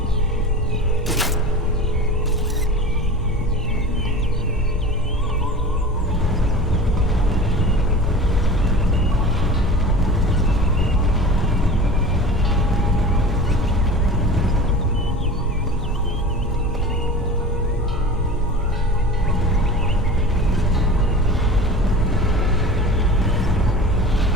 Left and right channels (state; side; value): normal; both; correlation 0.36